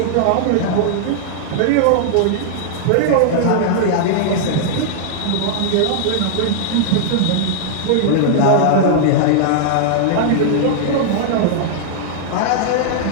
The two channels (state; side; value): different; both; correlation -0.01